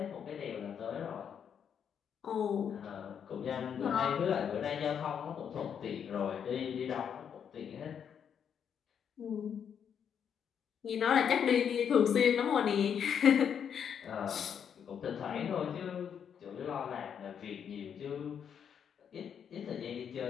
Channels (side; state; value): right; quieter; 7.9 dB